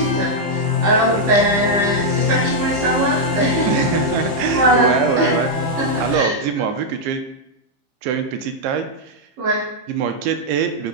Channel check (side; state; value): left; late; 15 ms